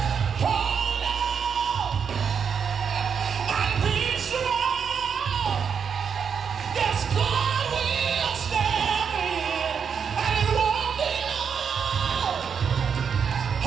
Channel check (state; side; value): quieter; left; 6.8 dB